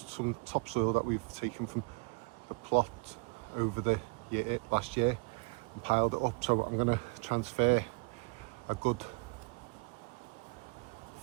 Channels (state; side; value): quieter; left; 30.9 dB